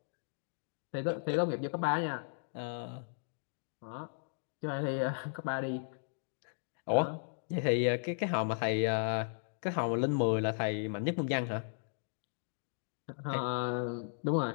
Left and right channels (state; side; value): silent; right; digital silence